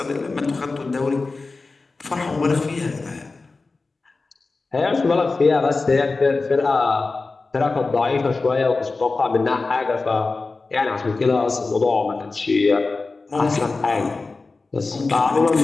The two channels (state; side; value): quieter; right; 3.8 dB